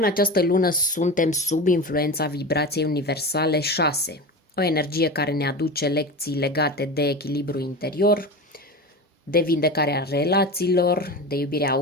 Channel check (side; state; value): both; normal; correlation 0.27